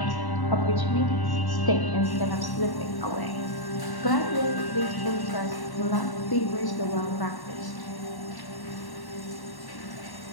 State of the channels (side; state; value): right; late; 1.1 ms